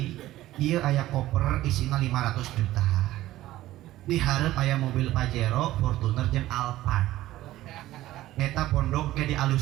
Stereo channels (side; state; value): left; quieter; 15.4 dB